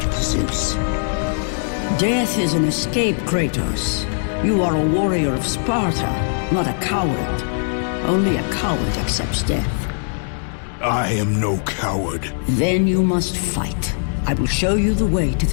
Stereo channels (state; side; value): silent; right; digital silence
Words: Zeus. Death is an escape, Kratos. You are a warrior of Sparta, not a coward. Only a coward accepts death. I am no coward. Then you must fight. I will show you the way to